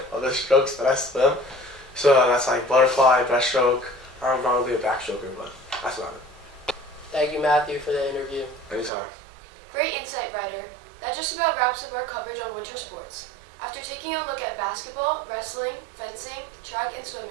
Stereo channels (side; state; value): left; drops out; at 8.9 s